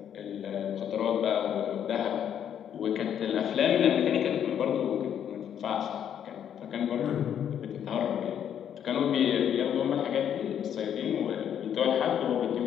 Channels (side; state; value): right; quieter; 9.3 dB